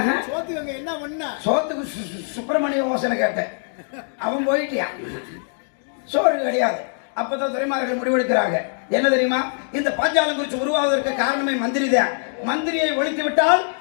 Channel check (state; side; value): silent; right; digital silence